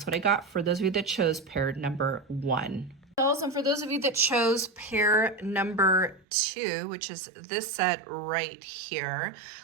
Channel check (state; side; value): drops out; left; at 6.2 s